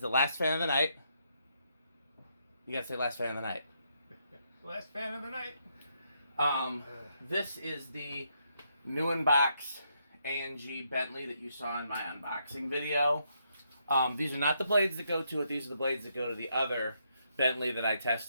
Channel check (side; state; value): both; inverted; correlation -0.77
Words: the last fan of the night. You gotta say last fan of the night. Last fan of the night. This is the new in-box A&G Bentley that you saw in my unboxing video. These are not the blades that go to it. These are the blades that go to the other Bentley that I